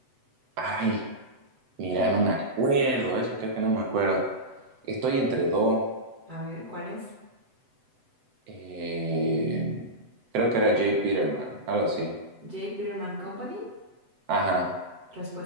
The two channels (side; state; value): left; late; 7.9 ms